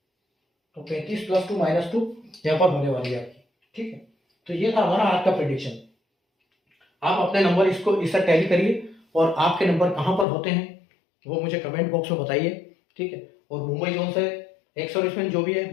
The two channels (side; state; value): right; drops out; at 10.2 s